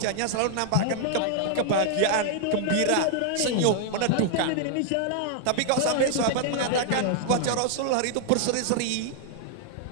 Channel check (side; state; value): both; different; correlation 0.00